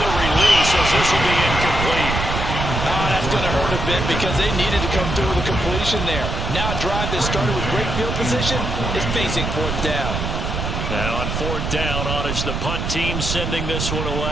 the release, as this will be incomplete. Oh, that's going to hurt a bit because they needed to come through with a completion there. Now a drive that started with great field position is facing 4th down. Now on 4th down, honors the punt team sending this one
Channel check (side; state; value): right; noise; rumble, 3 dB below the sound